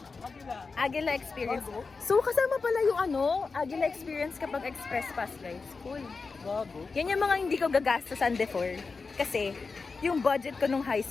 Agila Experience. So, kasama pala yung Agila Experience kapag Express Pass, guys. Cool. Bago. Yan yung mga hindi ko gagastosan before. Kasi, yung budget ko nung high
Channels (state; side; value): quieter; right; 4.4 dB